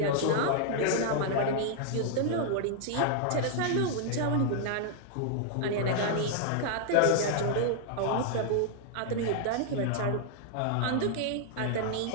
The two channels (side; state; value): both; different; correlation 0.00